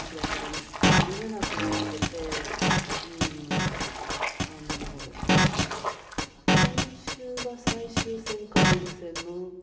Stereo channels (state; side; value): identical; both; correlation 1.00